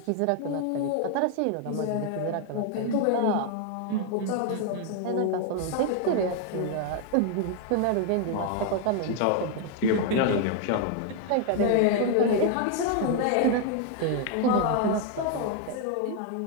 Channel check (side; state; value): both; different; correlation 0.00